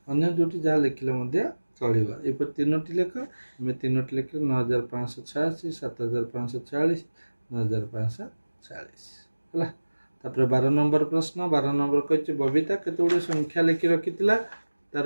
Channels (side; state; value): both; inverted; correlation -1.00